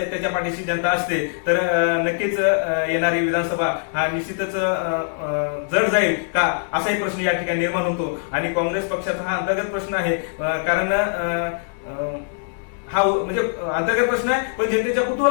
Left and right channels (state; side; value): silent; right; digital silence